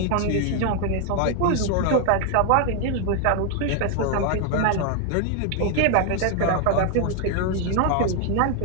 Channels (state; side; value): different; both; correlation 0.00